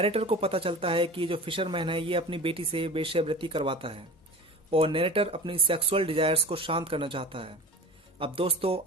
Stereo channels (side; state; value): both; normal; correlation 0.37